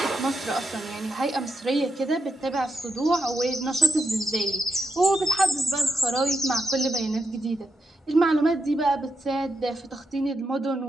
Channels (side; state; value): both; normal; correlation 0.84